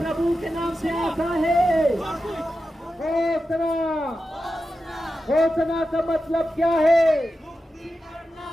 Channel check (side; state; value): both; normal; correlation 0.91